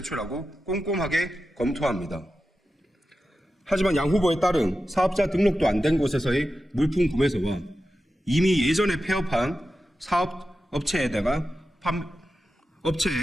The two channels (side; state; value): both; normal; correlation 0.92